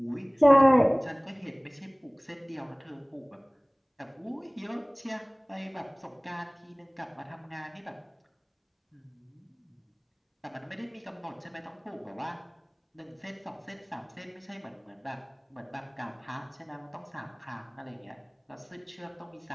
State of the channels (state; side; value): identical; both; correlation 1.00